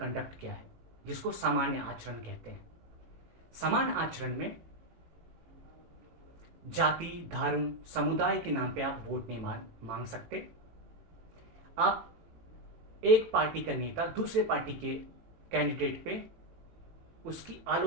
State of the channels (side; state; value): left; late; 18 ms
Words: क्या है, जिसको सामान्य आचरण कहते हैं। सामान्य आचरण में जाति, धर्म, समुदाय के नाम पे आप वोट नहीं मांग सकते। आप एक पार्टी का नेता दूसरे पार्टी के कैंडिडेट पे उसकी